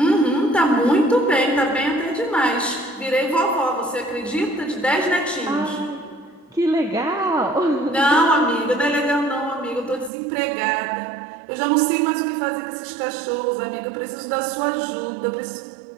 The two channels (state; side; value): drops out; left; at 10.1 s